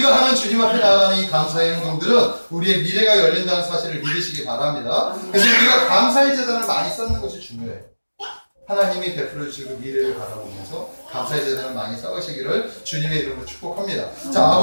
하는 주님 앞에 나아가는 이 감사의 행동들은 우리의 미래가 열린다는 사실을 믿으시기 바랍니다. 그래서 우리가 감사의 재단을 많이 쌓는 것이 중요해요. 하나님이 베풀어 주시고 미래를 바라보면서 감사의 재단을 많이 쌓으시기를 주님의 이름으로 축복합니다. 자,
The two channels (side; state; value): both; inverted; correlation -1.00